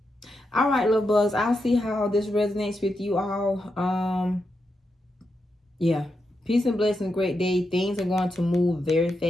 All right, little bugs. I'll see how this resonates with you all. Yeah. Peace and blessings, great day. Things are going to move very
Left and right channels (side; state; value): both; normal; correlation 0.86